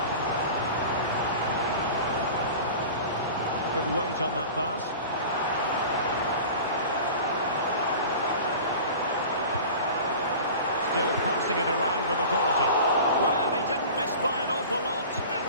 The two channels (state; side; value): inverted; both; correlation -0.37